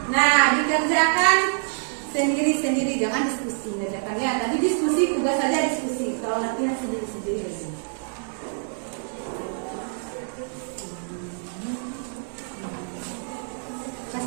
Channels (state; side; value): silent; left; 61 dB below the other